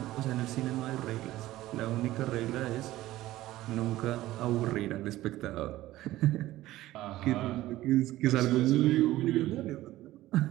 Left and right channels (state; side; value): quieter; left; 15.9 dB